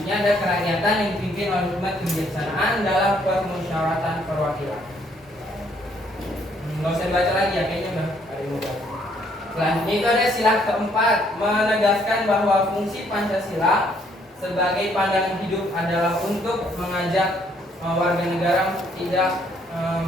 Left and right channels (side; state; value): both; normal; correlation 0.67